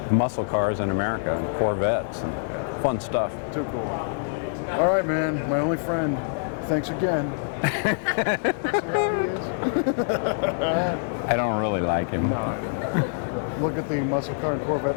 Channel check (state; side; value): silent; right; 60 dB below the other